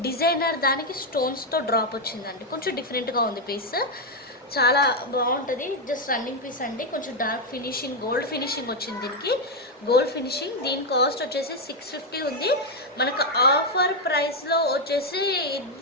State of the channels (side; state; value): both; normal; correlation 0.03